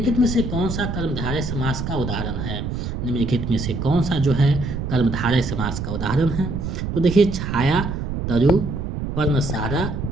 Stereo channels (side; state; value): right; noise; rumble, 4 dB below the sound